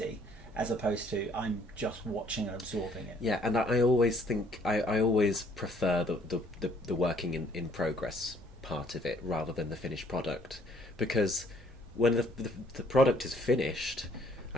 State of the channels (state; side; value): normal; both; correlation 0.62